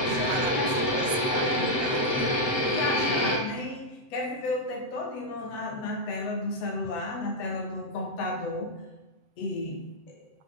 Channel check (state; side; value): late; right; 7.7 ms